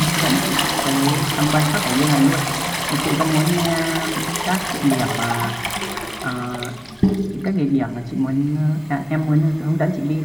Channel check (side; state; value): both; identical; correlation 1.00